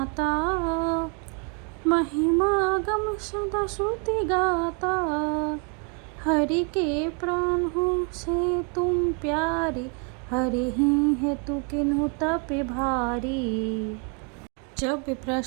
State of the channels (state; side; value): quieter; left; 37.2 dB